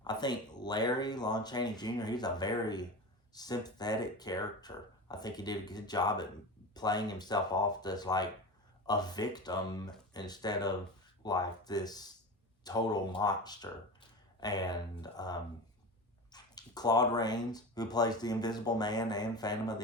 Larry, Lon Chaney Jr., he's a very sympathetic character. I think he did a good job at playing himself off as like a victim instead of like this total monster. And Claude Rains, who plays the Invisible Man and Phantom of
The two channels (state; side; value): normal; both; correlation 0.28